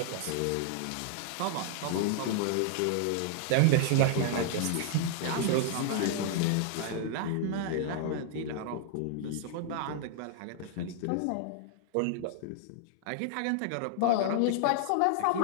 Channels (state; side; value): different; both; correlation -0.01